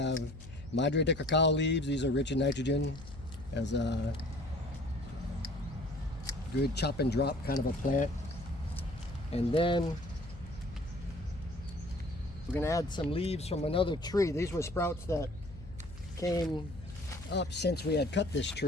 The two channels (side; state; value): left; noise; hum, 15 dB below the sound